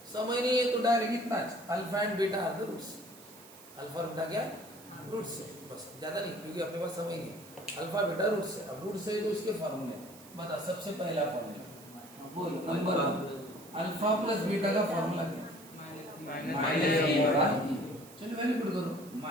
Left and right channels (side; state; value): right; noise; hiss, 20 dB below the sound